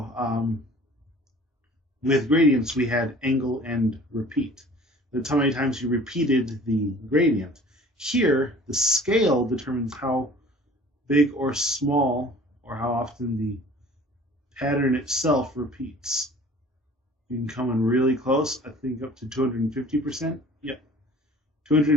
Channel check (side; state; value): both; normal; correlation 0.48